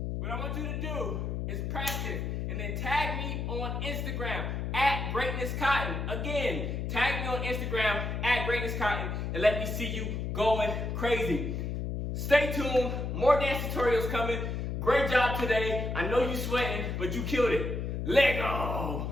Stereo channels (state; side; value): noise; left; hum, 3 dB below the sound